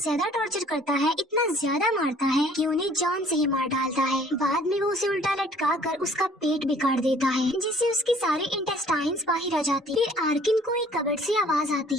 टॉर्चर करता है, इतना ज्यादा मारता है कि उन्हें जान से ही मार डालता है। बाद में वो उसे उल्टा लटका कर उसका पेट बिगाड़ देता है, जिससे उसकी सारी इंटेस्टाइन्स बाहर आ जाती है। फिर आर्किन को एक कबर्ड से आवाज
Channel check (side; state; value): both; normal; correlation 0.56